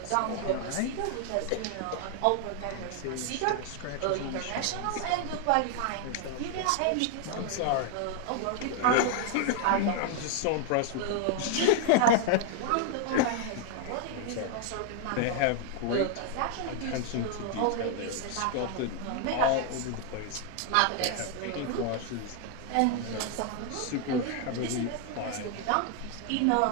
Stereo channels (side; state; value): both; different; correlation 0.00